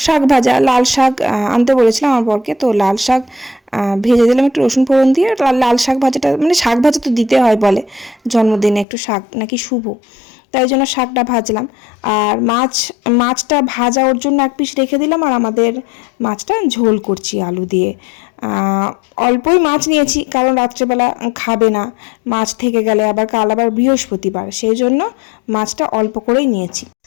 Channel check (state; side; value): drops out; right; at 8.8 s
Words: শাক ভাজা, লাল শাক আনতে বলেছিলাম আমার বরকে, তো লাল শাক ভেজে দিলাম একটু রসুন ফোড়ন দিয়ে। লাল শাক ভাজাটা মানে শাক ভাজা তো দিতে হয় বলে, জন্মদিনে একটু শাক নাকি শুভ, তাই জন্য শাকটা ভাজলাম। আর মাছটা ভাজা ওর জন্য 1 পিস রেখে দিলাম, আর আমাদের মাছটা ঝোল করছি আলু দিয়ে। অল্পই মাছ নিয়েছি, কারণ রাত্রেবেলা খাবে না মাছ থেকে গেলে, আবার কাল আবার বৃহস্পতিবার, সেই জন্য মাছটা অল্প করেই নিয়েছি।